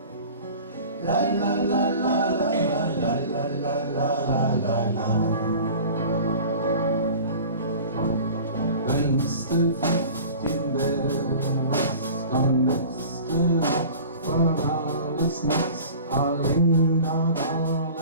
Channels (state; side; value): inverted; both; correlation -0.41